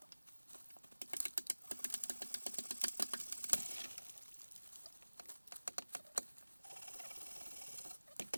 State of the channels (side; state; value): both; inverted; correlation -1.00